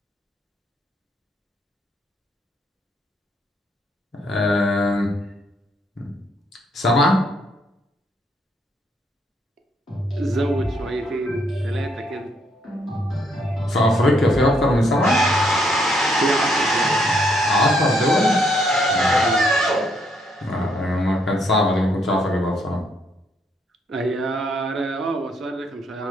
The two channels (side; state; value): both; normal; correlation 0.72